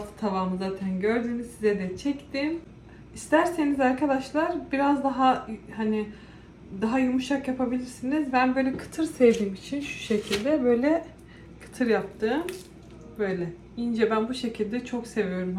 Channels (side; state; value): both; identical; correlation 1.00